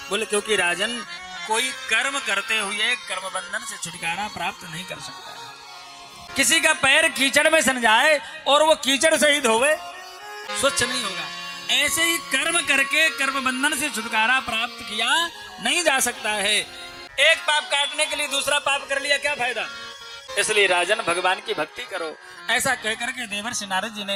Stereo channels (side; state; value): both; identical; correlation 1.00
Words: बोले क्योंकि राजन, कोई कर्म करते हुए कर्म बंधन से छुटकारा प्राप्त नहीं कर सकता है। किसी का पैर कीचड़ में सन जाए और वो कीचड़ सहित होवे, स्वच्छ नहीं होगा। ऐसे ही कर्म करके कर्म बंधन से छुटकारा प्राप्त किया नहीं जा सकता है। एक पाप काटने के लिए दूसरा पाप कर लिया, क्या फायदा? इसलिए राजन भगवान की भक्ति करो। ऐसा कहकर के देवर्षि नारद जी